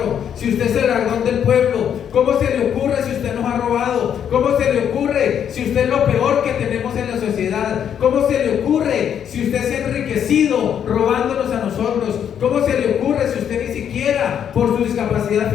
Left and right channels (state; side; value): quieter; right; 8.8 dB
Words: si usted es el dragón del pueblo? ¿Cómo se le ocurre si usted nos ha robado? ¿Cómo se le ocurre si usted es lo peor que tenemos en la sociedad? ¿Cómo se le ocurre si usted se ha enriquecido robándonos a nosotros? ¿Cómo se le ocurre si usted ni siquiera por su discapacidad